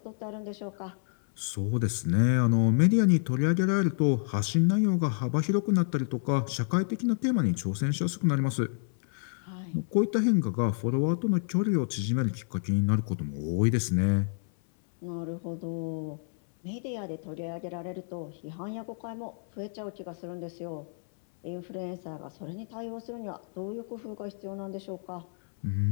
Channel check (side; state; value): right; silent; 58 dB below the other